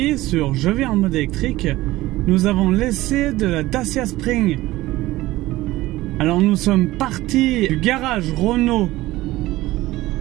sur Je vis en mode électrique, nous avons laissé de la Dacia Spring. Alors nous sommes partis du garage Renault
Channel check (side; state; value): left; quieter; 17.5 dB